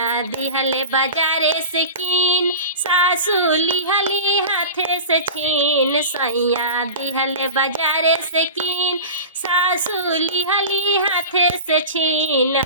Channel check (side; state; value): both; inverted; correlation -0.32